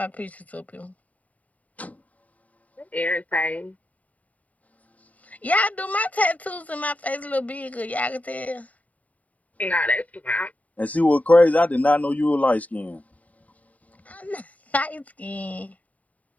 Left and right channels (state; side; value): late; right; 0.071 ms